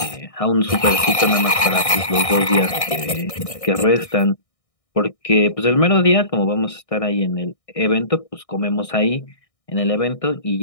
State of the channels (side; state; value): right; late; 1.6 ms